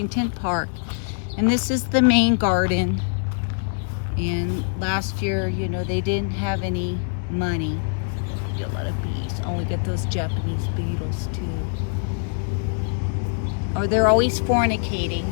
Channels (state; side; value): silent; right; digital silence